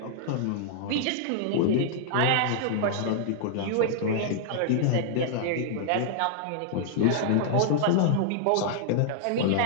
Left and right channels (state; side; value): different; both; correlation -0.01